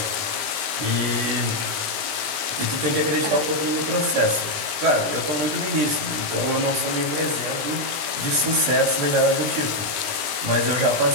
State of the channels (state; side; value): late; left; 20 ms